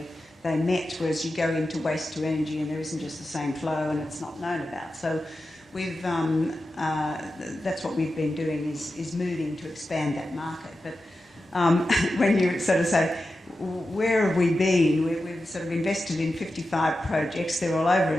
met, whereas you go into waste to energy and there isn't just the same flow and it's not known about. So we've that's what we've been doing, is moving to expand that market. But when you sort of say, where have we been? We've sort of invested in 55 projects. They're all over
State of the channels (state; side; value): normal; both; correlation 0.92